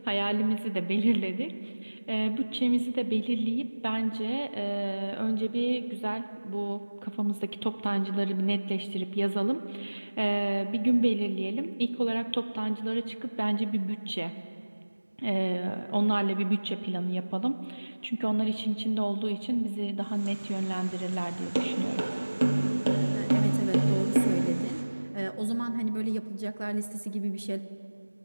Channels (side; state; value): both; inverted; correlation -1.00